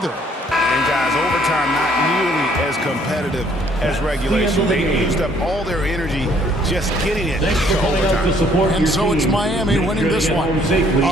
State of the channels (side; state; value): both; normal; correlation 0.63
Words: And guys, overtime not nearly as competitive as regulation. They used up all their energy just getting it to overtime. And so it's Miami winning this one.